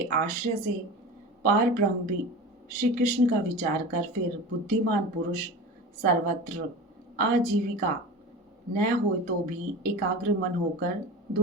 आश्रय से पार ब्रह्म भी श्री कृष्ण का विचार कर फिर बुद्धिमान पुरुष सर्वत्र आजीविका न हो तो भी एकाग्र मन होकर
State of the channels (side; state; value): both; normal; correlation 0.32